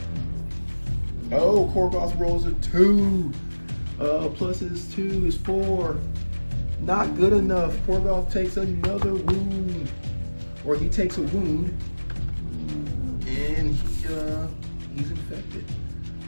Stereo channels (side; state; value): both; inverted; correlation -1.00